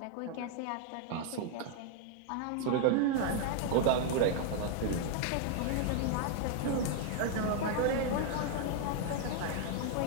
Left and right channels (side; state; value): both; different; correlation 0.00